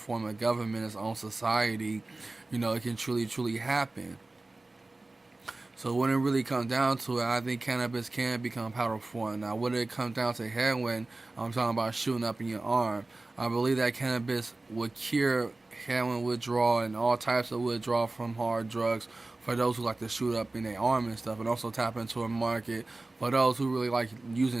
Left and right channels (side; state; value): left; quieter; 3.1 dB